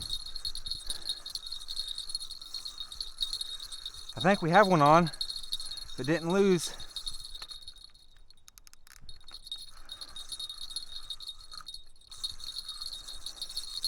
I think we have one on, but didn't lose.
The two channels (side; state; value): both; identical; correlation 1.00